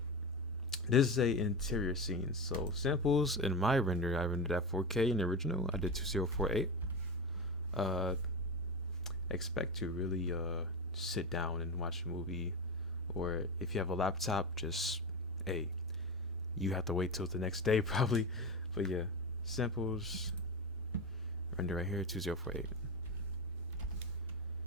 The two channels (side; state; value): both; normal; correlation 0.20